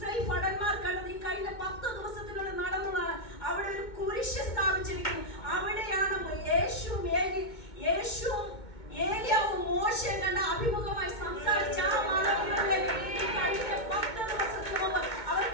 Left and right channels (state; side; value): late; right; 2.2 ms